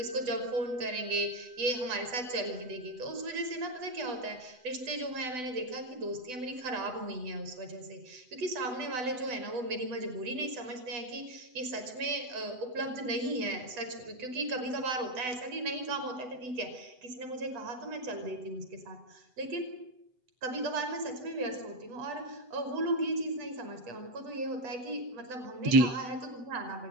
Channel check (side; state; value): left; late; 8.0 ms